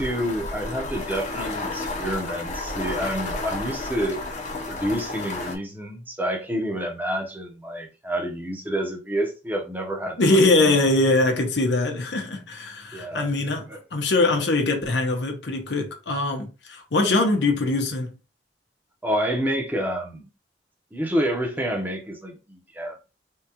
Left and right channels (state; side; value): normal; both; correlation 0.42